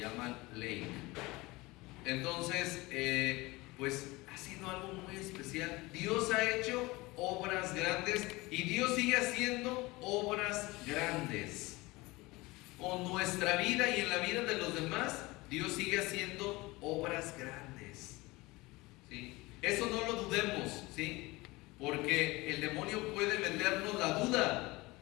Lake. Entonces, pues ha sido algo muy especial. Dios ha hecho obras grandes y Dios sigue haciendo obras grandes. Con nuestra vida y en la vida de los demás, Dios sigue haciendo obras grandes. ¿Sí? Eso no lo dudemos, ¿sí? Porque el demonio puede vendernos la duda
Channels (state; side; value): quieter; right; 21.9 dB